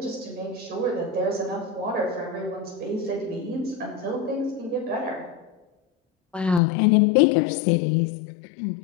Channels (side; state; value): right; drops out; at 6.6 s